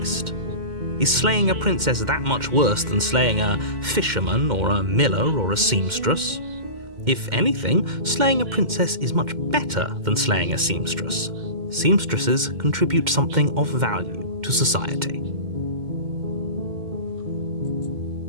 Is slaying a princess that much worse than slaying a fisherman or a miller or a seamstress? If anything, slaying a princess is much better than slaying a seamstress. Seamstresses contribute something of value to society.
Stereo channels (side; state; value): left; late; 2.1 ms